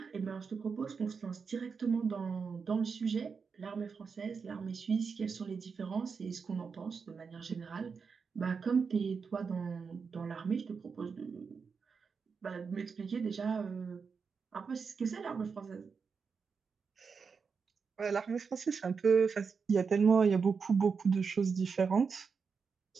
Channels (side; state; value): left; quieter; 5.5 dB